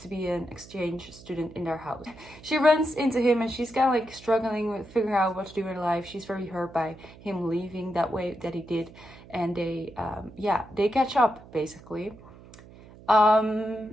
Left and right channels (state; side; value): noise; right; hum, 20 dB below the sound